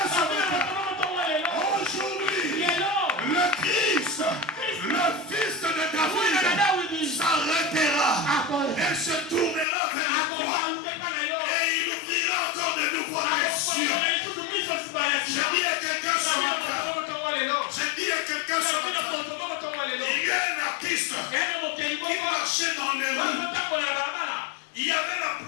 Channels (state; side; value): drops out; right; at 9.7 s